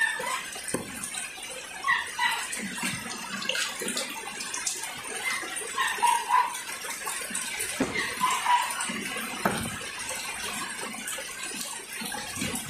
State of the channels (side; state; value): both; identical; correlation 1.00